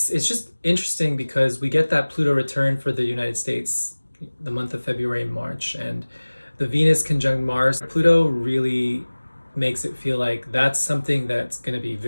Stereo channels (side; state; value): both; inverted; correlation -1.00